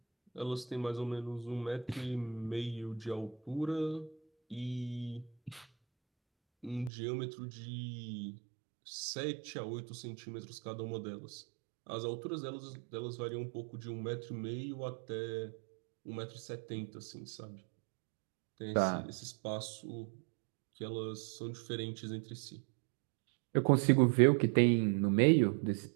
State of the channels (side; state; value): left; drops out; at 6.9 s